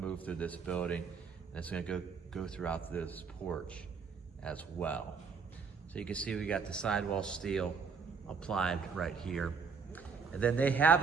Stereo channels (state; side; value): quieter; left; 5.5 dB